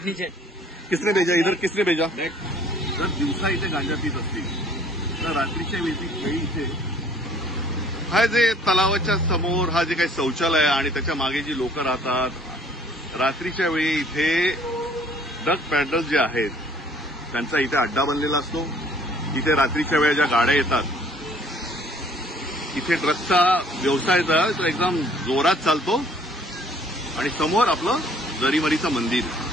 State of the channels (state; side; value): normal; both; correlation 0.57